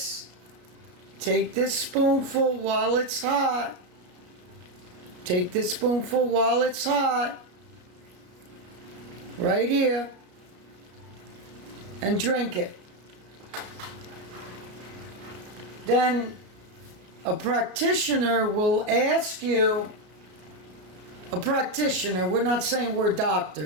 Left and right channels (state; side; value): late; left; 33 ms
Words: Take this spoonful while it's hot. Take this spoonful while it's hot. Right here. And drink it. Then a practitioner will ask you, a practitioner, we're not saying we're